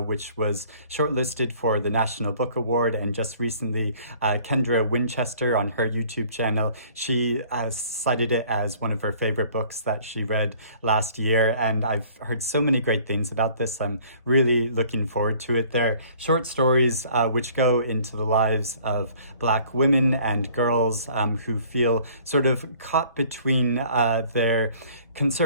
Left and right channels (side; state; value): both; inverted; correlation -0.54